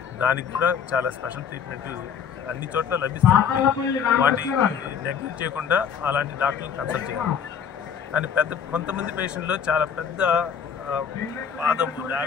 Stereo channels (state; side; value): quieter; right; 7.4 dB